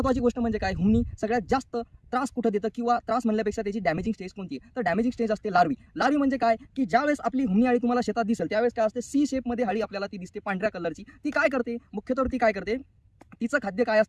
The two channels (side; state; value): both; identical; correlation 1.00